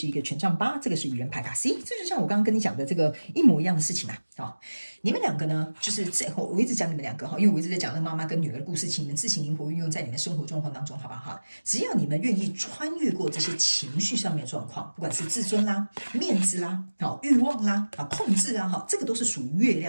一个权杖8，这个是愚人牌卡。C， 这就像我刚刚跟你讲的这个一模一样的事情啊。你们两个呢，就是我一直讲你们两个因为我一直在讲那个妈妈跟女儿的故事，请你们自行灵活运用在你们生活状况当中，好不好？只要你们愿意穿越过这些情绪上面的状况，不管是自尊啦、面子啦、欲望啦、控制啊，这个都是属于月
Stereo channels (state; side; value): inverted; both; correlation -1.00